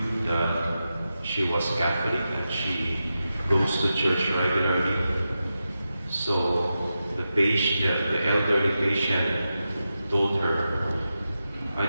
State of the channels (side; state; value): both; inverted; correlation -0.90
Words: that she was Catholic and she goes to church regularly. So the elderly patient told her, "I